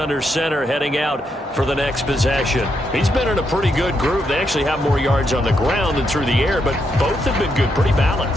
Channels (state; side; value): normal; both; correlation 0.80